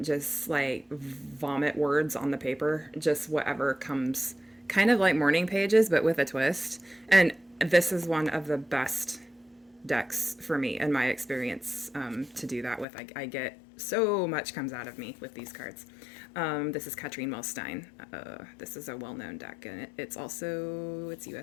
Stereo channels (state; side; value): drops out; right; at 12.9 s